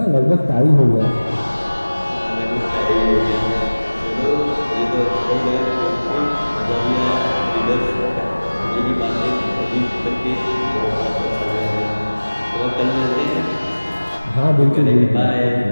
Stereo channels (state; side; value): inverted; both; correlation -1.00